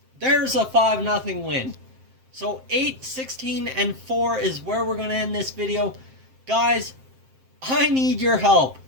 There's a 5-0 win. So 8, 16, and 4 is where we're going to end this video. Guys, I need your help.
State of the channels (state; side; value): late; left; 7.6 ms